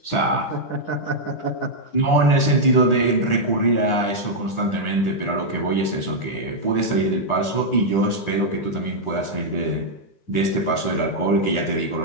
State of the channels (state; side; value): late; right; 10 ms